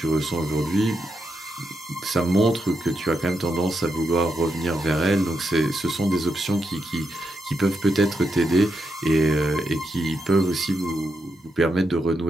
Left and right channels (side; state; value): both; normal; correlation 0.83